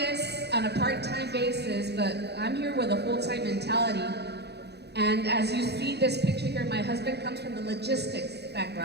on a part-time basis, but I'm here with a full-time mentality. And as you see this picture here, my husband comes from the logistics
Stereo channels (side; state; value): left; late; 0.48 ms